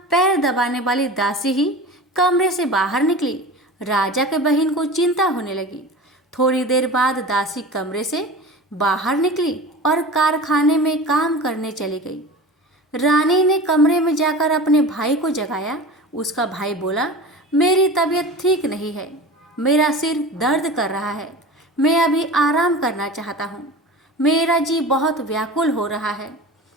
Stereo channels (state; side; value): normal; both; correlation 0.34